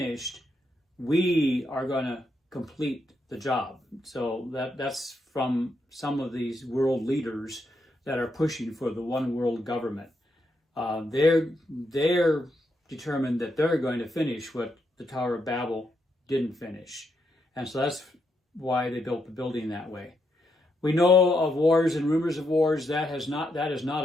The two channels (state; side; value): normal; both; correlation 0.80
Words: we are going to complete the job. So that's from some of these world leaders that are pushing for the one world government. They're determined that they're going to finish what the Tower of Babel didn't finish. And so that's why they built the building that way. We know of wars and rumors of wars. That is not